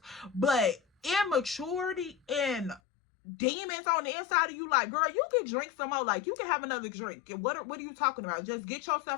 But immaturity and demons on the inside of you, like, girl, you can drink some more, like, you can have another drink. What are you talking about? Just get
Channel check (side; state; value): right; drops out; at 2.8 s